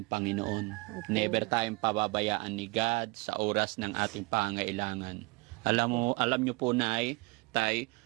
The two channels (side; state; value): left; quieter; 26.1 dB